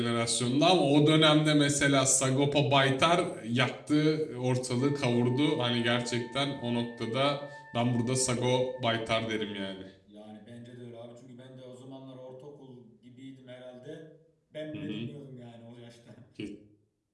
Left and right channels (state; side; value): identical; both; correlation 1.00